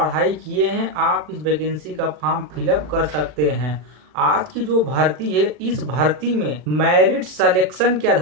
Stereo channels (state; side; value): late; left; 40 ms